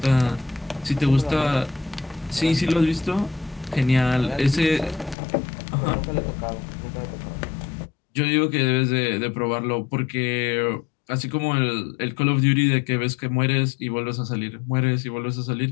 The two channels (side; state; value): right; drops out; at 5.2 s